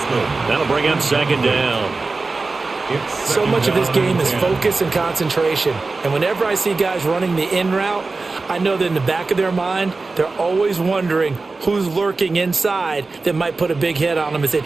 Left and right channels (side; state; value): left; quieter; 3.7 dB